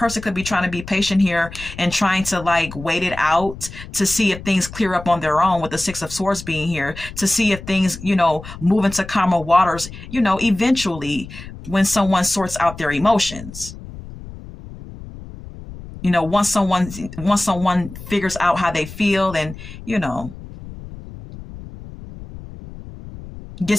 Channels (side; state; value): left; noise; rumble, 14 dB below the sound